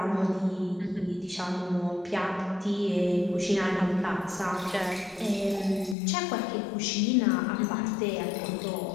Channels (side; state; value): right; drops out; at 6.0 s